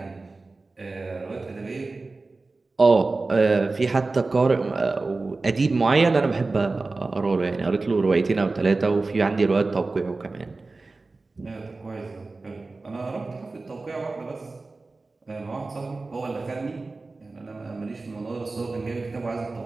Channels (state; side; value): quieter; left; 3.6 dB